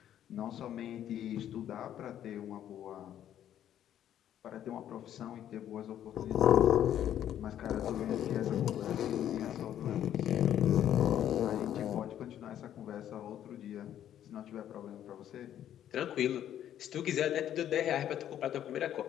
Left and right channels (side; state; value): right; quieter; 10.8 dB